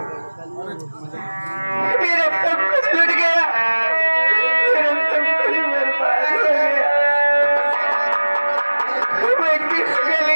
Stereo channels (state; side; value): inverted; both; correlation -1.00